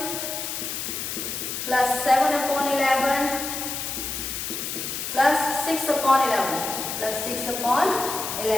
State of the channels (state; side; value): noise; left; hiss, 4 dB below the sound